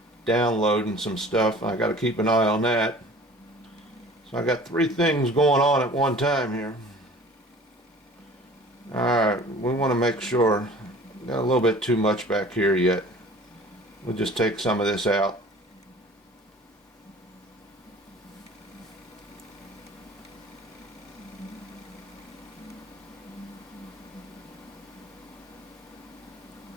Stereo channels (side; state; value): both; normal; correlation 0.46